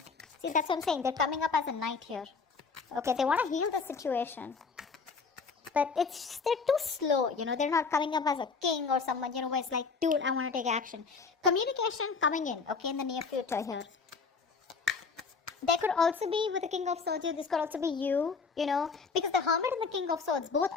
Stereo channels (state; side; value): quieter; right; 5.0 dB